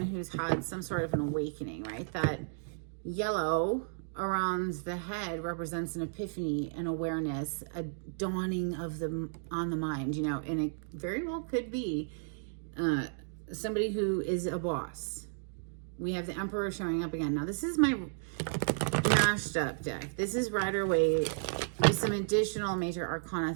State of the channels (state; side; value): silent; left; digital silence